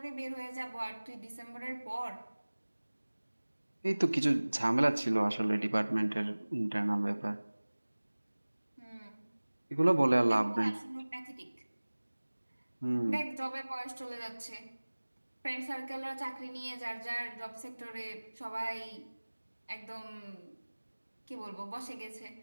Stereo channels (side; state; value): both; inverted; correlation -1.00